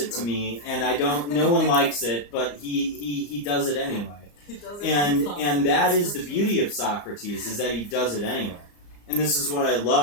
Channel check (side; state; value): right; late; 34 ms